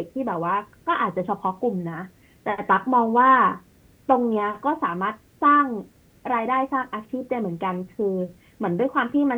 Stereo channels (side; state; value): both; identical; correlation 1.00